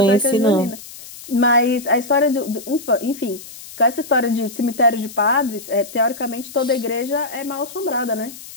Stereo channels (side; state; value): left; noise; hiss, 16 dB below the sound